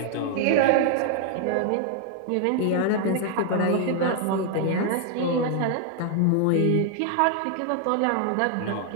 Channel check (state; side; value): different; both; correlation 0.00